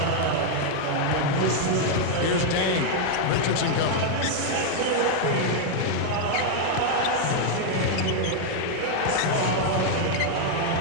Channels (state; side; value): different; both; correlation 0.00